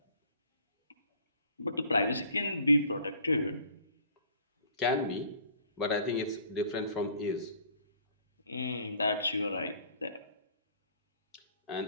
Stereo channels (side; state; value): both; inverted; correlation -0.53